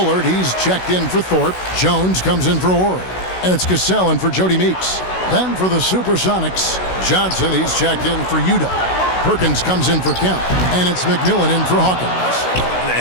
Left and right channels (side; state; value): right; late; 16 ms